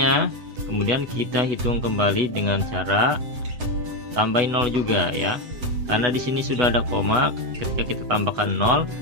kemudian kita hitung kembali dengan cara tambahin 0 juga ya. Karena di sini sudah ada koma, ketika kita tambahkan 0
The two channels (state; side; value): late; left; 8.1 ms